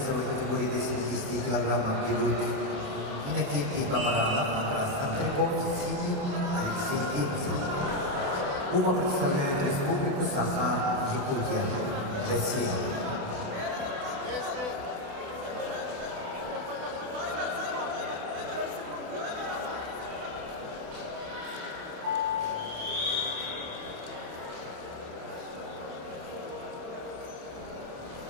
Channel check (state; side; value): late; left; 28 ms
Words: категории до 70 килограммов идут Иннокентий Бабаранов на красном трико, синий Алексей Демцев. Оба представляют республику Саха-Якутия, Россия.